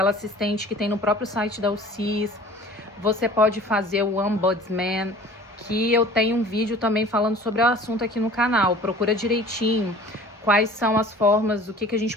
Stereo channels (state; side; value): normal; both; correlation 0.46